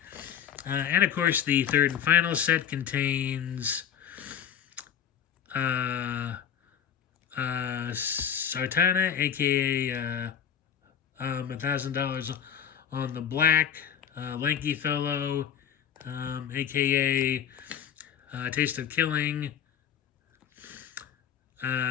And of course, the third and final set contains Sartana, aka $1,000 on the Black, Lanky Fellow, aka Taste of Killing.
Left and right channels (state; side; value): quieter; right; 8.8 dB